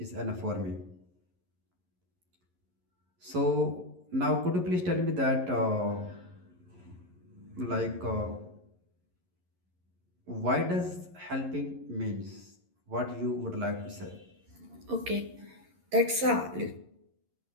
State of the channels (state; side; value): late; left; 11 ms